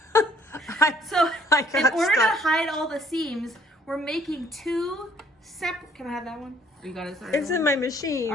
So in order to hide all the seams, we're making 2 separate, can I have that one? You got it? It's in my machine.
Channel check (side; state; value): both; normal; correlation 0.62